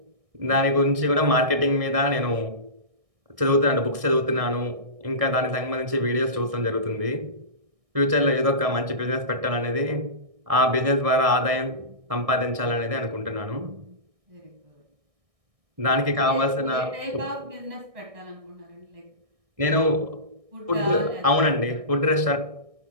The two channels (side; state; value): left; late; 1.6 ms